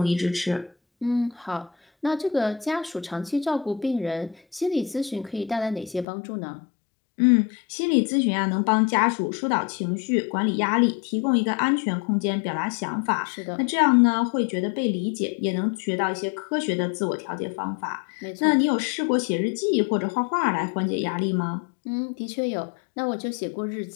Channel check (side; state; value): right; drops out; at 6.1 s